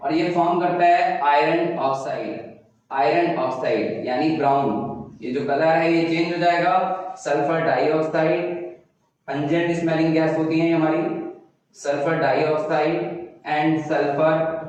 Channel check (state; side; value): identical; both; correlation 1.00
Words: और ये फॉर्म करता है आयरन ऑक्साइड यानी ब्राउन। ये जो कलर है ये चेंज हो जाएगा, sulphur dioxide, pungent smelling gas होती है हमारी, sulphur dioxide and sulphur